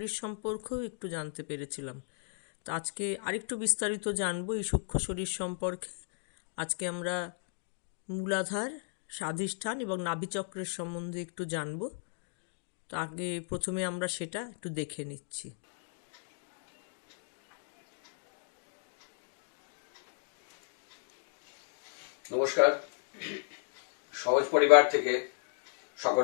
সম্পর্কেও একটু জানতে পেরেছিলাম। তো আজকে আরেকটু বিস্তারিত জানবো এই সূক্ষ্ম শরীর সম্পর্কে। আজকে আমরা মূলাধার, স্বাধিষ্ঠান এবং নাভিচক্রের সম্বন্ধে একটু জানবো। তো আগে প্রথমে আমরা সেটা একটু দেখে নিচ্ছি। নমস্কার। সহজ পরিবার থেকে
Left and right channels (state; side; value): silent; right; digital silence